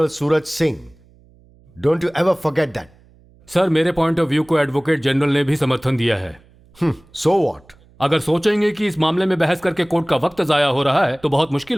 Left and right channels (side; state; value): right; noise; hum, 29 dB below the sound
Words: Suraj Singh. Don't you ever forget that. Sir, मेरे पॉइंट ऑफ व्यू को एडवोकेट जनरल ने भी समर्थन दिया है। So what? अगर सोचेंगे कि इस मामले में बहस करके कोर्ट का वक्त जाया हो रहा है तो बहुत